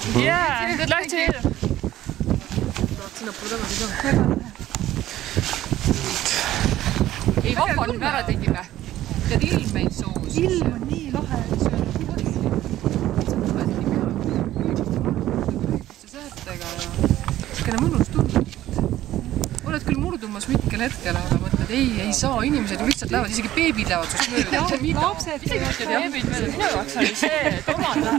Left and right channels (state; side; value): quieter; left; 14.0 dB